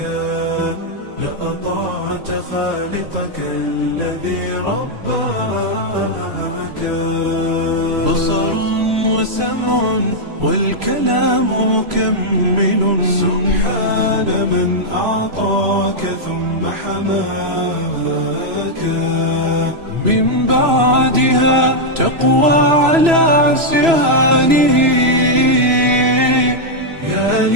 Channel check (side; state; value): left; late; 3.0 ms